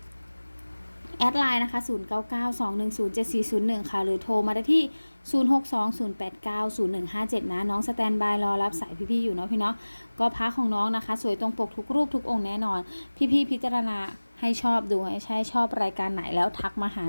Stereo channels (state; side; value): inverted; both; correlation -1.00